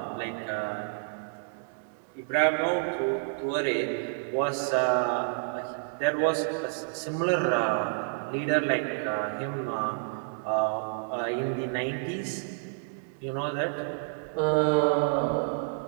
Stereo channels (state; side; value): silent; left; digital silence